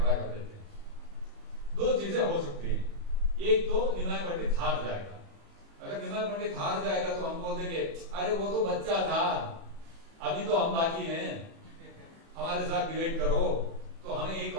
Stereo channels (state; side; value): late; left; 36 ms